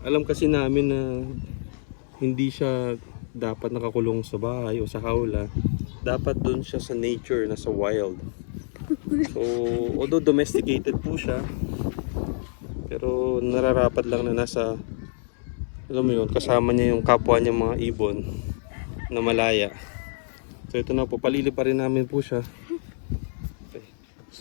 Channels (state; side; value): silent; right; 61 dB below the other